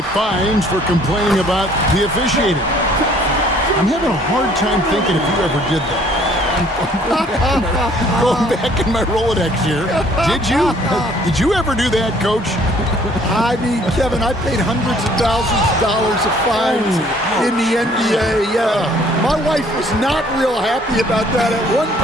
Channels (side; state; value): both; normal; correlation 0.59